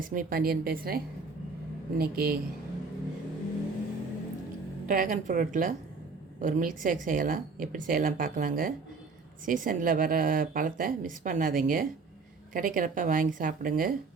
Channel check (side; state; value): left; quieter; 4.4 dB